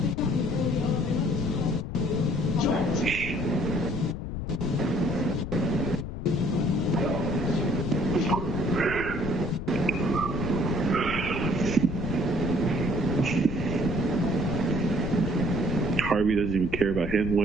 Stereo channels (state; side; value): noise; left; rumble, 6 dB below the sound